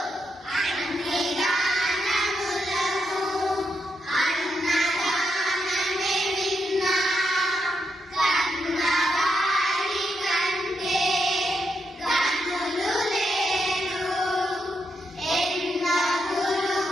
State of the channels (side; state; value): both; normal; correlation 0.82